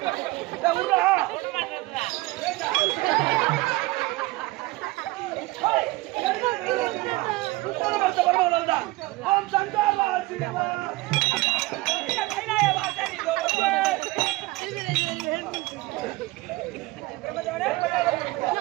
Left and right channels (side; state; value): left; quieter; 21.0 dB